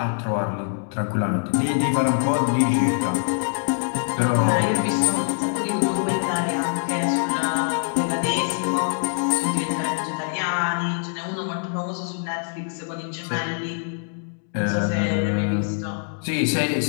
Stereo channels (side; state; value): right; silent; digital silence